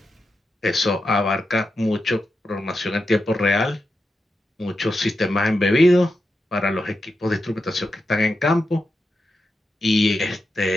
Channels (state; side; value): normal; both; correlation 0.88